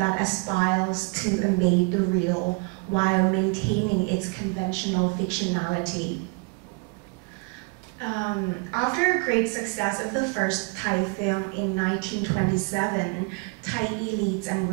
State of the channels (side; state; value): left; quieter; 30.7 dB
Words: aspires to embed the real while maintaining its conventional fictionality. After a great success of the first Thai film in 1927, Thai elites and